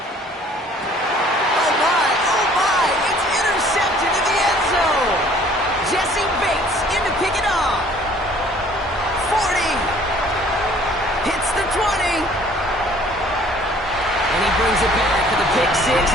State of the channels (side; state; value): both; normal; correlation 0.55